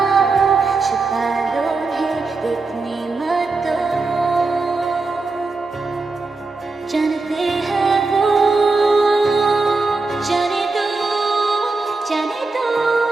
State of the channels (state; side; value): quieter; left; 3.7 dB